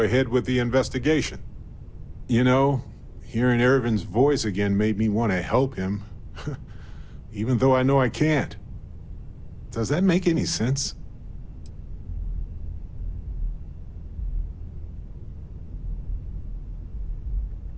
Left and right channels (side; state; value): both; identical; correlation 1.00